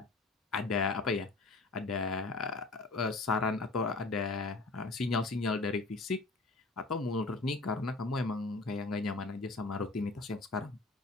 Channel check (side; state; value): right; quieter; 3.5 dB